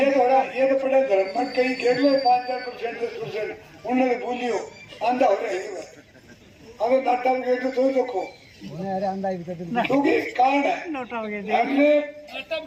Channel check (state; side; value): identical; both; correlation 1.00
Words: तो पड़े धर्म मत कहीं कह लो 5-4% 10% उन्होंने भूलियो आंधा हो रहा है। अगर नाटा में गए तो देखो क्योंकि कारण है हमने